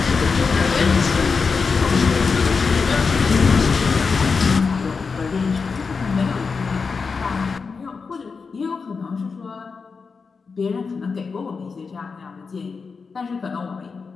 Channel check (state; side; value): quieter; right; 5.0 dB